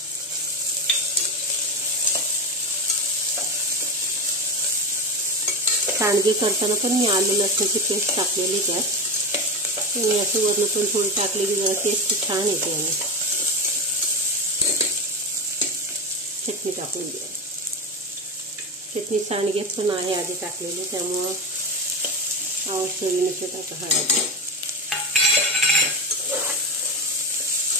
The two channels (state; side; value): normal; both; correlation 0.20